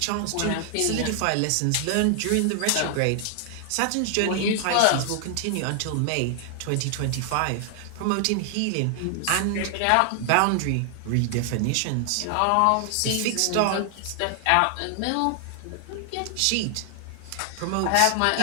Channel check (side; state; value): both; different; correlation 0.00